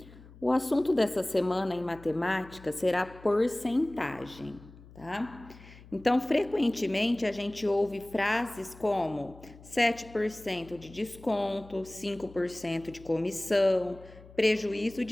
O assunto dessa semana em matemática será porcentagem, tá? Então, frequentemente a gente ouve frases como 7% de desconto, 5% de comissão, prejuízo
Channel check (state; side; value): noise; left; hum, 21 dB below the sound